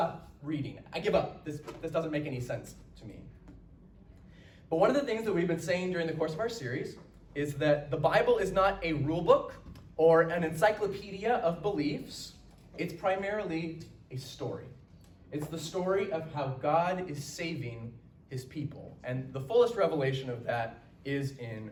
reading. I give up. This doesn't make any sense to me. But one of the things that we've been saying during the course of our series is that the Bible is not a rule book or an encyclopedia of beliefs. It's primarily a story. It's the story of how God is saving his people. And the fullest revelation of that is in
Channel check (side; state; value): both; identical; correlation 1.00